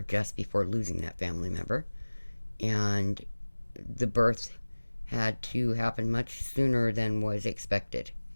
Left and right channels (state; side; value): inverted; both; correlation -1.00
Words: just before losing that family member, and the birth had to happen much sooner than was expected.